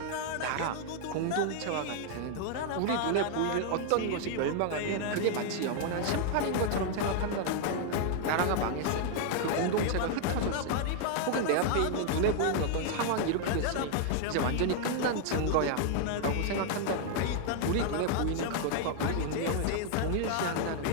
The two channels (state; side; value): different; both; correlation 0.00